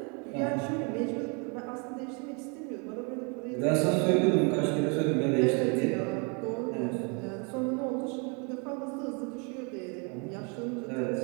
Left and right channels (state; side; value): quieter; left; 34.4 dB